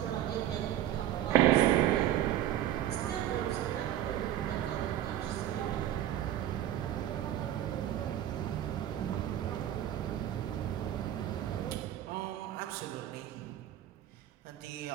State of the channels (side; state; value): left; quieter; 12.1 dB